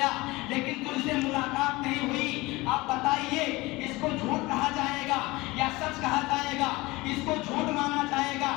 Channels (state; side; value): quieter; right; 21.6 dB